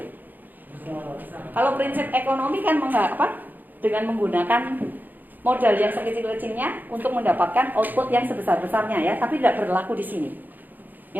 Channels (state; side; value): late; left; 0.086 ms